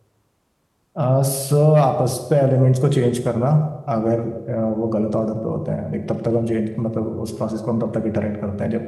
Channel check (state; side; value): identical; both; correlation 1.00